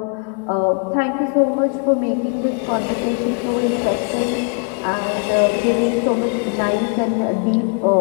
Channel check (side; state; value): right; quieter; 39.2 dB